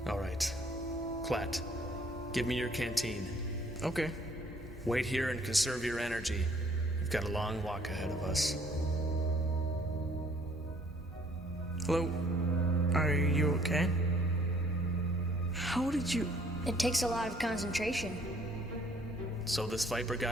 All right. Clat, give me your canteen. Okay. Wait here and conserve your energy. We've got a long walk ahead of us. Hello? Are you okay? How did you... It takes a lot of concentration. So this Viper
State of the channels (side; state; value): both; normal; correlation 0.60